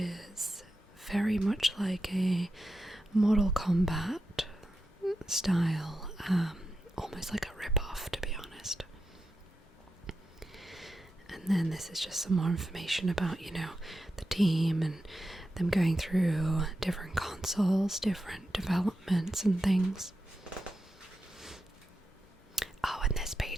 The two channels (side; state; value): both; normal; correlation 0.88